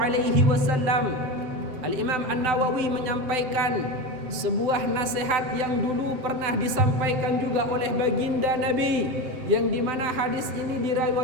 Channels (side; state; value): left; late; 7.7 ms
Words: wasallam. Al-Imam An-Nawawi menyampaikan sebuah nasihat yang dulu pernah disampaikan juga oleh baginda Nabi, yang dimana hadis ini